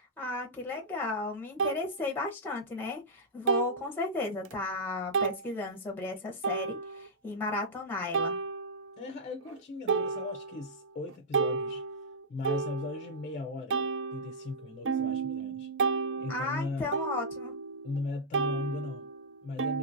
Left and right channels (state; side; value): normal; both; correlation -0.12